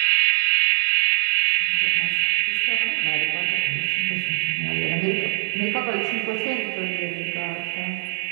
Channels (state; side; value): silent; left; digital silence